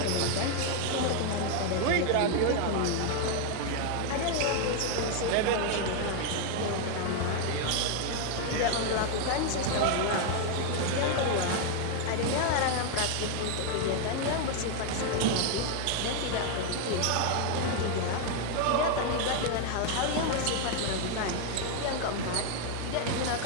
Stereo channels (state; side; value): different; both; correlation 0.01